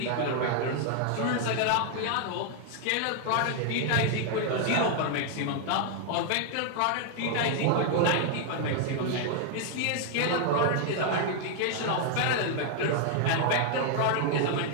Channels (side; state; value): both; different; correlation 0.00